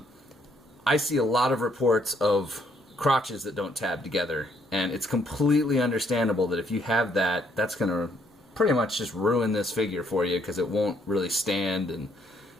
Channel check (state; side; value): normal; both; correlation 0.69